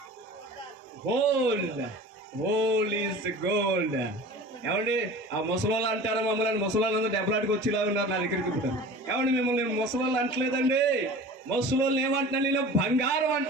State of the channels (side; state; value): both; normal; correlation 0.39